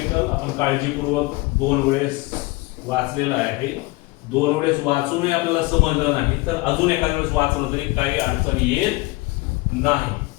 आपण काळजीपूर्वक दोन वेळेस वाचलेला आहे. दोन वेळेस वाचूनही आपल्याला समजलं नाही तर अजून एखाद्या वेळेस वाचलं तरी काही अडचण येत नाही.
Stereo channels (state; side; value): quieter; right; 22.1 dB